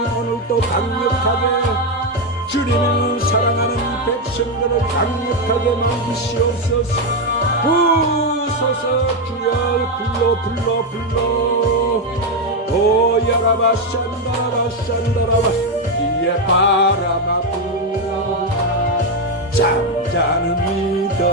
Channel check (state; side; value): normal; both; correlation 0.06